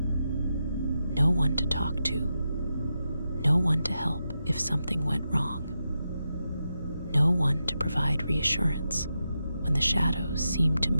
one to talk to, no one to help if something went wrong, no one to provide reassurance when the shadows seemed to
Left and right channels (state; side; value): inverted; both; correlation -0.88